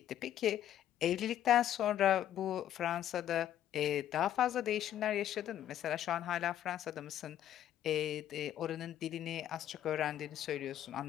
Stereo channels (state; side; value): quieter; right; 11.3 dB